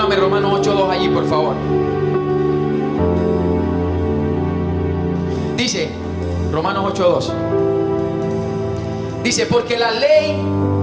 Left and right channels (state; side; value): identical; both; correlation 1.00